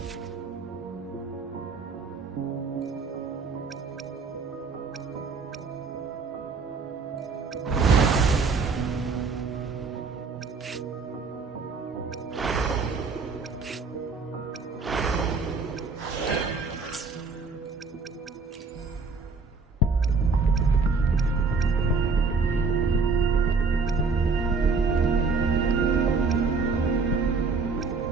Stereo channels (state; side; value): quieter; left; 4.4 dB